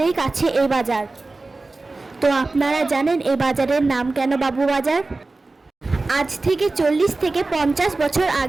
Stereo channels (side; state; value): left; quieter; 3.4 dB